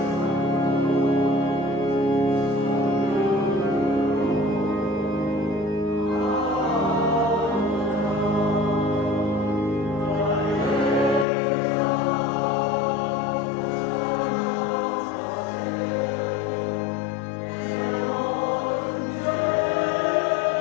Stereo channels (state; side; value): drops out; right; at 11.2 s